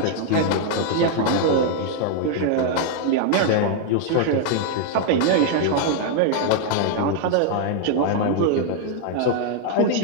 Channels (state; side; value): different; both; correlation 0.00